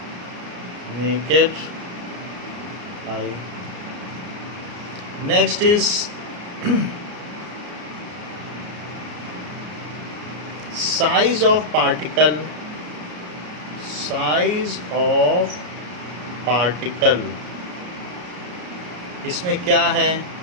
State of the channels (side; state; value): left; late; 34 ms